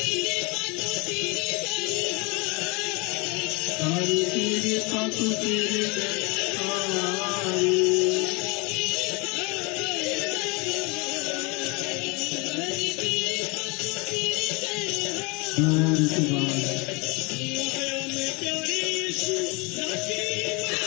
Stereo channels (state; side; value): quieter; right; 28.2 dB